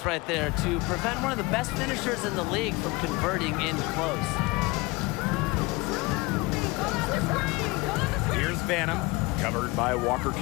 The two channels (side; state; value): right; quieter; 23.6 dB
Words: right there to prevent one of the best finishers in the league from converting in close. Here's Banham. Covered by Walker